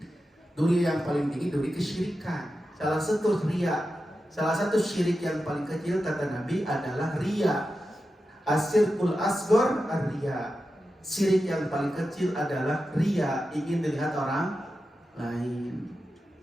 Duri yang paling tinggi, duri kesyirikan. Salah satu riya, salah satu syirik yang paling kecil kata Nabi adalah riya. Asyirkul asghar ar-riya. Syirik yang paling kecil adalah riya, ingin dilihat orang lain.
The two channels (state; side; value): normal; both; correlation 0.91